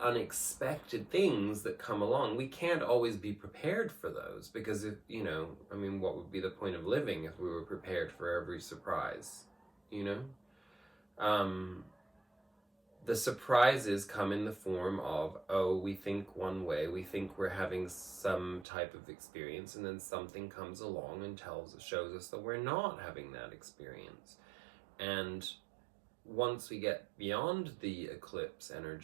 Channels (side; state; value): left; drops out; at 18.7 s